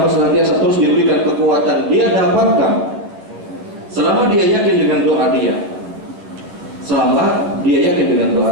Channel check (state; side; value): late; left; 10 ms